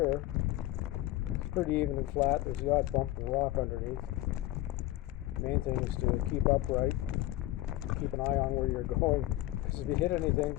It's pretty even and flat. There's the odd bump and rock underneath. Main thing is to keep upright, keep an eye on where you're going, because if you hit anything,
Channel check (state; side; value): quieter; right; 16.3 dB